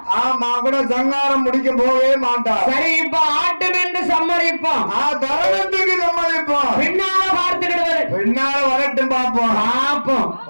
மகுட சங்காரம் முடிக்க போகவே மாட்டா. சரி, இப்ப ஆட்டம் என்று சம்மதிப்போம். தரணத்துக்கு சம்மதிப்போம். பின்னால பார்த்துக்கிடுவாரு. பின்னால வரட்டும், பாப்போம் பாப்போம்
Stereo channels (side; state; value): both; inverted; correlation -1.00